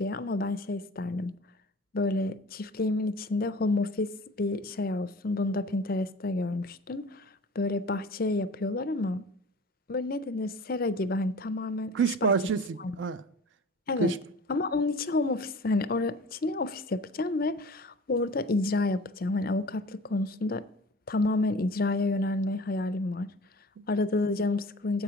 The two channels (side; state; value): both; normal; correlation 0.42